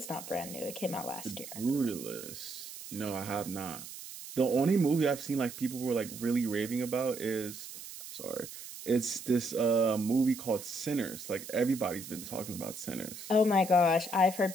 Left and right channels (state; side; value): noise; right; hiss, 12 dB below the sound